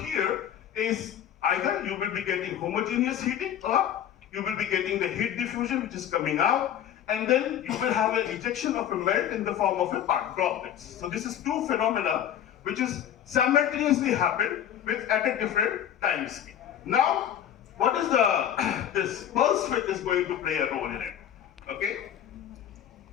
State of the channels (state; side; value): quieter; right; 10.1 dB